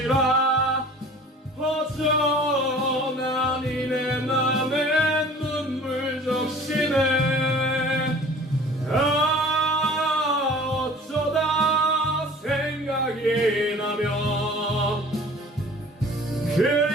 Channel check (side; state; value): both; normal; correlation 0.46